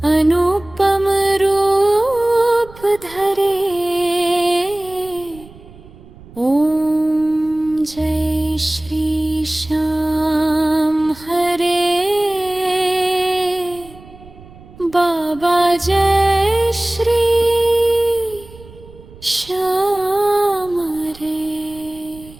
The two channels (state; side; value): noise; right; rumble, 21 dB below the sound